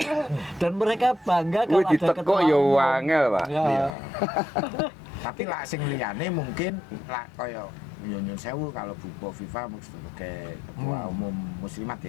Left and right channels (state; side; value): drops out; right; at 3.9 s